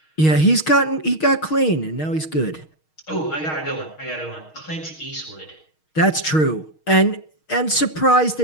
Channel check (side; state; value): right; late; 6.4 ms